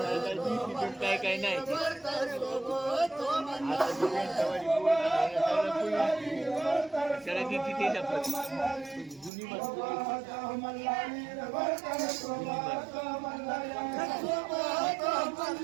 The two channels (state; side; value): drops out; left; at 9.3 s